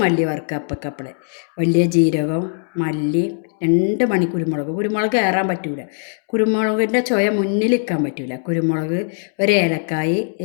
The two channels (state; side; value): silent; right; 66 dB below the other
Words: വറുക്കുക അപ്പക്കപ്പളെ. വലിയ ജീരകം, മല്ലി, 2 മണി കുരുമുളക്. കുരുമുളക് കയറാൻ പറ്റൂല, കുരുമുളകിൻ്റെ ചുയ മുന്നിൽ നിൽക്കാൻ പറ്റൂല. കുരുമുളക്, 1 ഏലക്കായി,